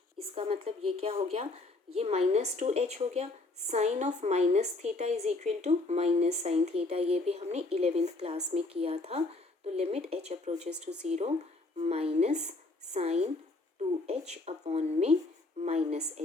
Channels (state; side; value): quieter; right; 3.1 dB